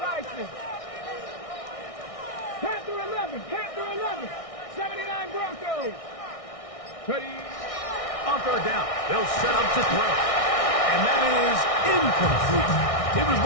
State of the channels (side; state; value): right; late; 1.6 ms